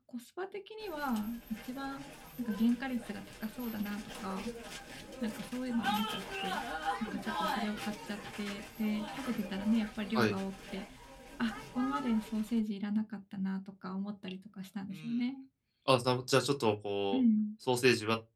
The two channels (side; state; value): both; identical; correlation 1.00